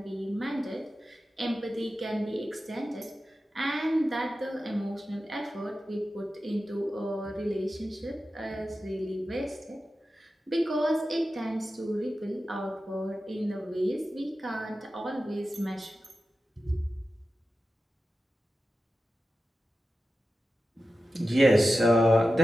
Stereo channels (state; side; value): normal; both; correlation 0.92